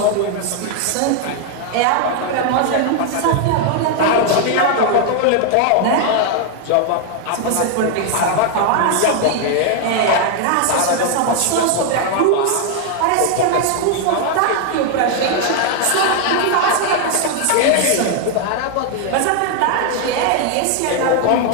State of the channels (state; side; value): different; both; correlation 0.00